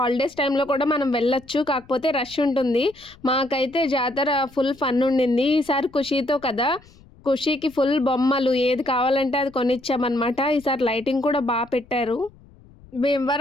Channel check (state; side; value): noise; left; rumble, 25 dB below the sound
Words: టైంలో కూడా మనం వెళ్ళొచ్చు. కాకపోతే రష్ ఉంటుంది. మాకైతే జాతర ఫుల్ ఫన్ ఉండింది. ఈసారి ఖుషీతో కదా, ఖుషీకి ఫుల్ బొమ్మలు ఏది కావాలంటే అది కొనిచ్చామన్నమాట. ఈసారి లైటింగ్ కూడా పెట్టారు.